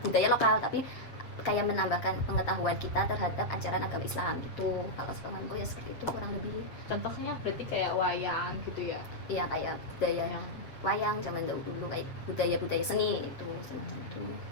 budaya lokal, tapi kayak menambahkan pengetahuan kita terhadap ajaran agama Islam gitu. Kalau sepemahamanku ya seperti itu kurang lebih. Contohnya berarti kayak wayang gitu ya? Iya, kayak budaya yang wayang zaman dulu, kayak budaya seni itu semacam itu.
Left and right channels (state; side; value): late; right; 7.6 ms